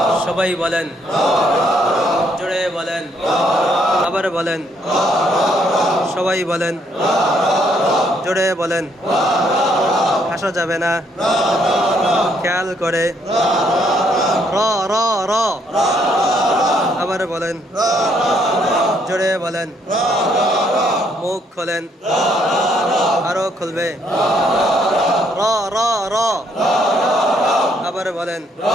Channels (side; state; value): both; normal; correlation 0.70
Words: সবাই বলেন জোরে বলেন আবার বলেন সবাই বলেন জোরে বলেন হাসা যাবে না খেয়াল করে র র র আবার বলেন জোরে বলেন মুখ খোলেন আরো খুলবে র র র আবার বলেন